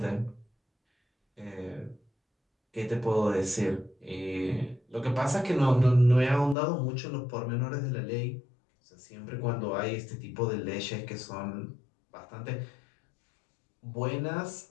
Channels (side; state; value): right; drops out; at 6.6 s